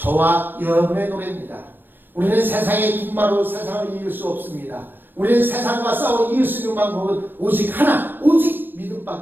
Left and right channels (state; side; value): late; left; 0.095 ms